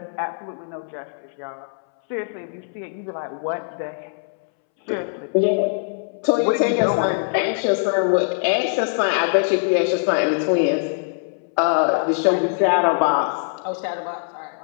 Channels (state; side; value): silent; right; 64 dB below the other